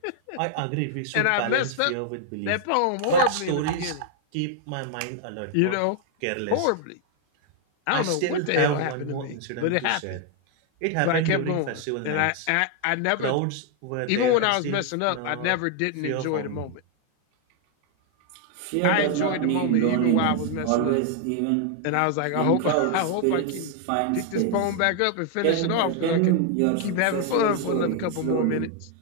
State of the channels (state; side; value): different; both; correlation 0.00